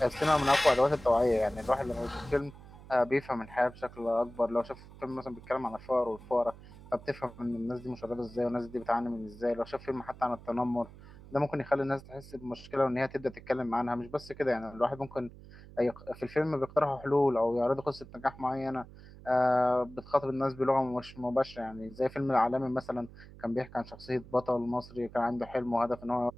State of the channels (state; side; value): noise; right; hum, 18 dB below the sound